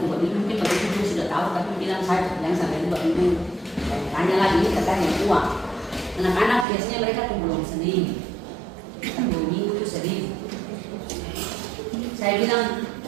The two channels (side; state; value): left; drops out; at 6.7 s